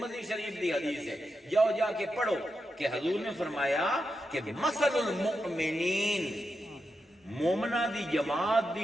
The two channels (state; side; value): normal; both; correlation 0.87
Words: شریف دی حدیث ہے، جاؤ جا کے پڑھو کہ حضور نے فرمایا کہ مثل المؤمنین، مومنہ دی جماعت